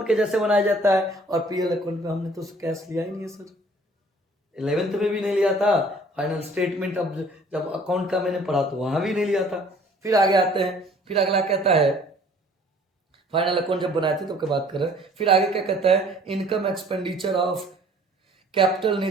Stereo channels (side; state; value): both; normal; correlation 0.54